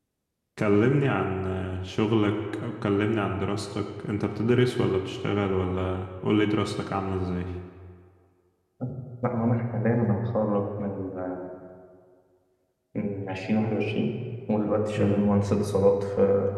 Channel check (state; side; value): identical; both; correlation 1.00